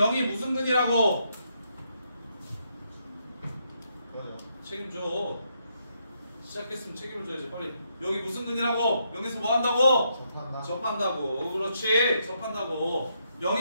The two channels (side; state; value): both; inverted; correlation -0.77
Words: 무슨 근이라고? 뭐죠? 책임져. 시작했으면 책임을 져야지. 빨리. 여기 무슨 근이라고? 여기서 뭐 한다고? 접한다. 접한다고. 그렇지. 접한다고.